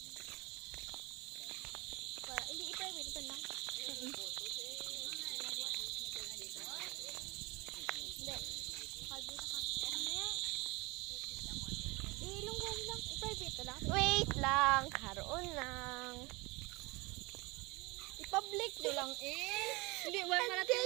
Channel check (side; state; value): left; quieter; 25.0 dB